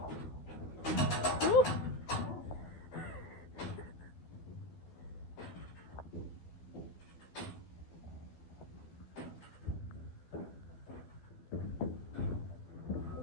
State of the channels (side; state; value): right; late; 14 ms